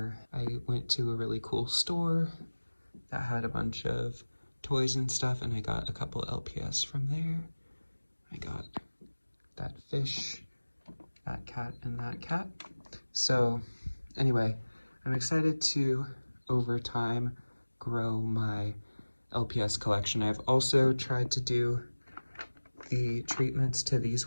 I went to a really cool store that had a bunch of toys and stuff, and I got a couple LPS from there. I got that fish, that cat, and that cat. So anyway, I'm excited to, over time, grow my LPS collection. I've also tried to do the treatments to these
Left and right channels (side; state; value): both; inverted; correlation -1.00